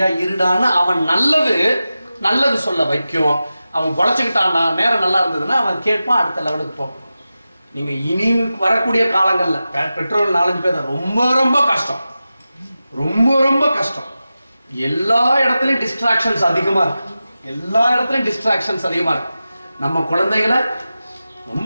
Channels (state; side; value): inverted; both; correlation -0.93